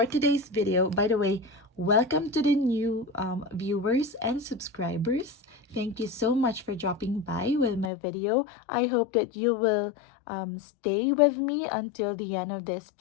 today's video, by the way, welcome to the new viewers and subscribers. Thank you so much for dropping by with my video. I hope that you will stay with me until the end of this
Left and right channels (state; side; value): drops out; right; at 7.9 s